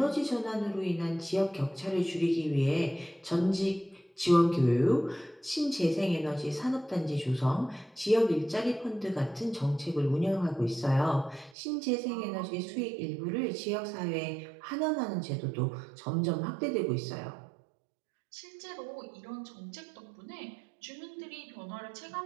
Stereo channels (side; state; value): left; drops out; at 11.6 s